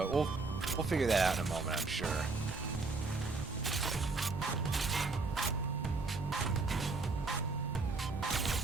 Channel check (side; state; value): left; quieter; 3.8 dB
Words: we'll figure that out in a moment, I'm sure.